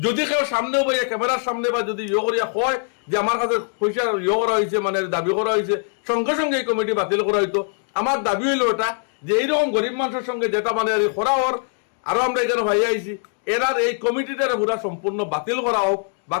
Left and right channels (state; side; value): silent; right; 57 dB below the other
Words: যদি কেউ সামনেও বা ক্যামেরার সামনে বা যদি ইয়ে করিয়া কয় যে আমার কাছে পয়সা ইয়ে করা হয়েছে মানে দাবি করা হয়েছে, সঙ্গে সঙ্গে এই কমিটি বাতিল করা হইতো। আমার দাবি হইলো এটা যে এইরকম গরিব মানুষের সঙ্গে যেটা মানে করা হওয়ার আরো আমরা এখানে ভাই আইছি, এরার এই কমিটিটার পুরা সম্পূর্ণ বাতিল করা হোক,